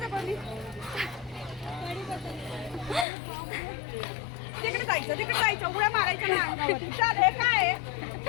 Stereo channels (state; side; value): drops out; right; at 3.1 s